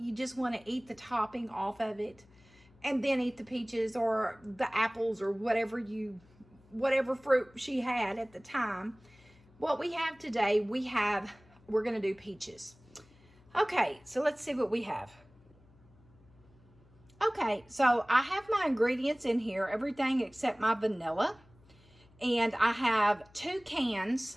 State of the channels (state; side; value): noise; left; hum, 28 dB below the sound